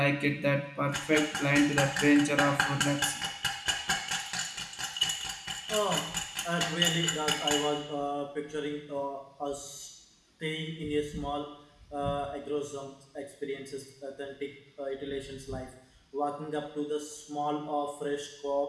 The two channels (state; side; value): identical; both; correlation 1.00